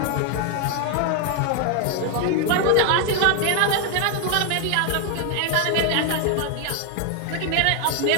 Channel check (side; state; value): both; different; correlation 0.01